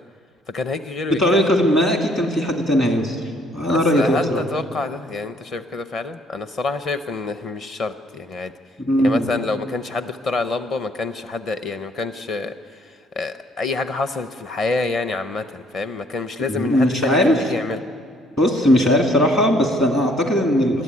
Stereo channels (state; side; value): normal; both; correlation 0.64